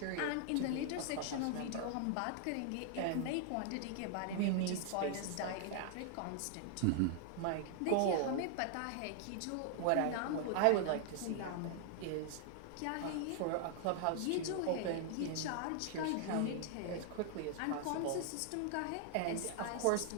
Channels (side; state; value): both; different; correlation 0.00